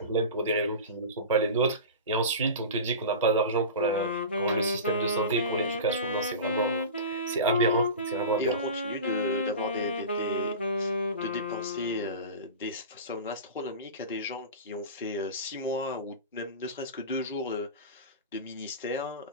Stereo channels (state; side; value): inverted; both; correlation -0.30